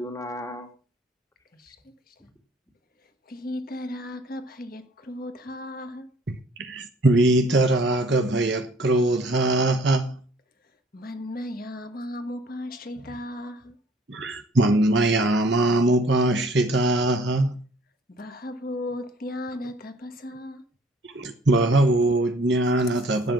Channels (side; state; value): both; normal; correlation 0.56